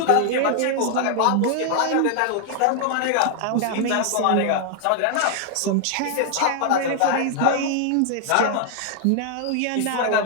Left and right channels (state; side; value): different; both; correlation 0.00